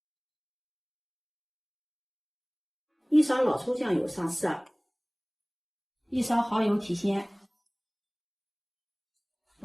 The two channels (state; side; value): identical; both; correlation 1.00